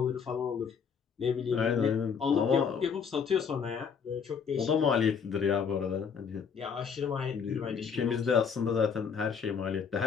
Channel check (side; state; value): right; quieter; 6.5 dB